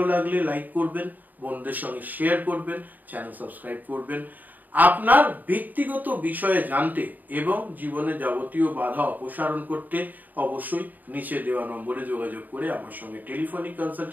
লাগলে লাইক করবেন, বন্ধুদের সঙ্গে শেয়ার করবেন, চ্যানেল সাবস্ক্রাইব করবেন। আপনার ব্যক্তিগত বিষয়ে জানতে এবং জীবনে যাবতীয় বাধা অপসারণ করতে অবশ্যই নিচে দেওয়া নম্বরে যোগাযোগ করে আমার সঙ্গে টেলিফোনিক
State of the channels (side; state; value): left; late; 0.084 ms